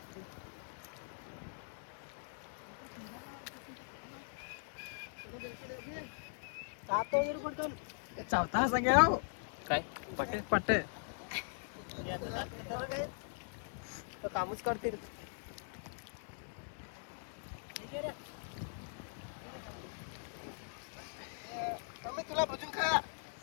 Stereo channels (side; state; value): right; silent; digital silence